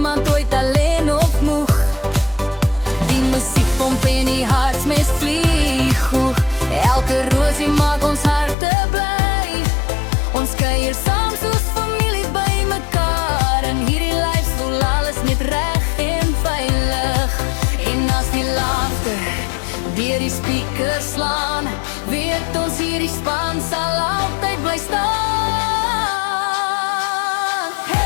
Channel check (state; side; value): drops out; right; at 8.6 s